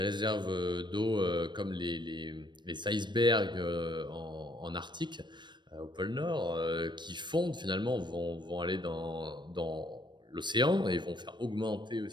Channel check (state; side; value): late; left; 0.22 ms